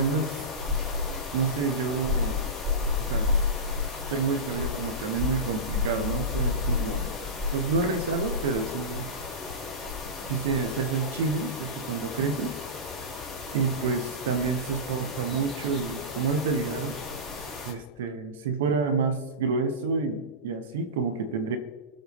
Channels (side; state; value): both; normal; correlation -0.18